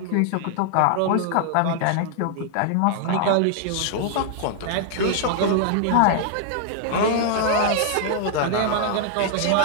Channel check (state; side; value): different; both; correlation 0.00